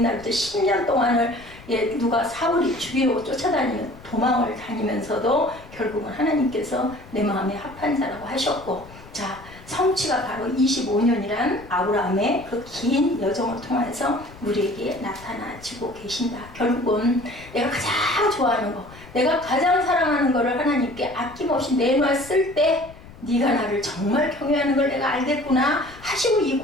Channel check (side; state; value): left; noise; rumble, 19 dB below the sound